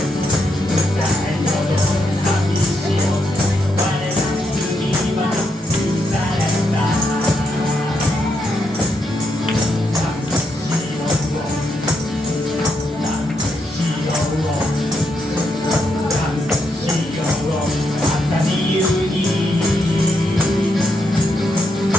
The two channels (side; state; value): both; normal; correlation 0.80